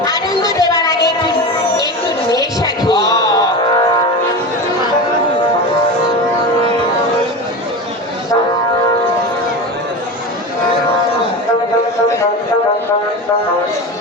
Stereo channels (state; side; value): normal; both; correlation 0.26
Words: আনন্দ দেওয়ার আগে একটু নেশা খেয়ে